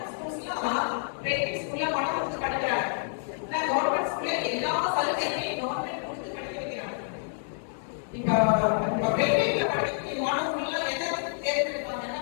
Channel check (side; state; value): right; silent; digital silence